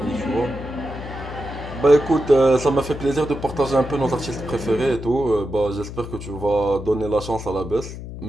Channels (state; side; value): noise; left; hum, 10 dB below the sound